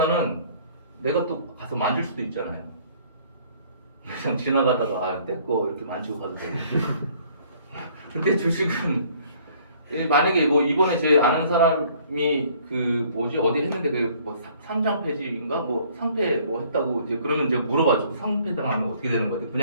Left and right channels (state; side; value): inverted; both; correlation -0.58